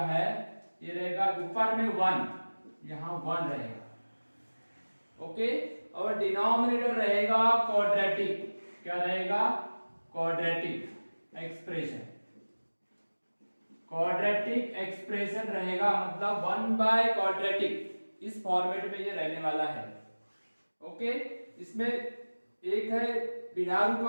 है, ये रहेगा ऊपर में 1, यहाँ 1 रहेगा, ओके। और डिनोमिनेटर रहेगा क्वाड्रेटिक, क्या रहेगा, क्वाड्रेटिक एक्सप्रेशन। क्वाड्रेटिक एक्सप्रेशन रहेगा, मतलब 1/क्वाड्रेटिक, इस फॉर्मेट में ये रहने वाला है, ओके। इसमें एक है बिना रूट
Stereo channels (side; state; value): both; inverted; correlation -1.00